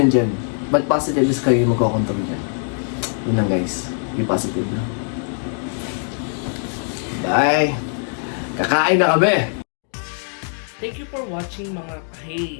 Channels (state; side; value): silent; right; 56 dB below the other